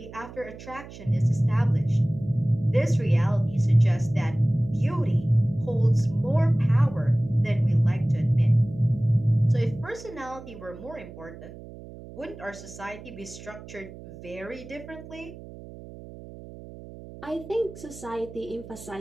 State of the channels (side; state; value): right; noise; hum, 16 dB below the sound